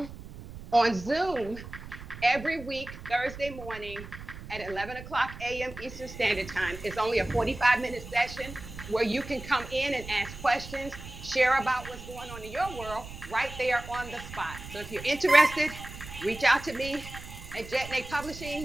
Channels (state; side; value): noise; right; rumble, 13 dB below the sound